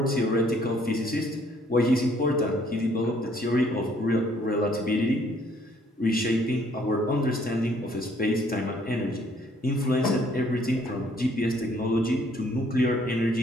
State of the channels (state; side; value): normal; both; correlation 0.63